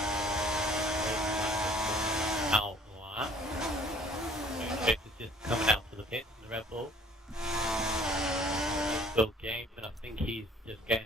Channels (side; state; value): both; normal; correlation 0.55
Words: Out lap. Chase is just coming out to the pits in the Red Bull. Bill Games, and I think he's just